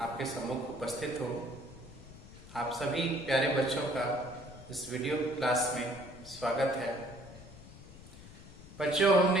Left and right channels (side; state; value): left; noise; rumble, 17 dB below the sound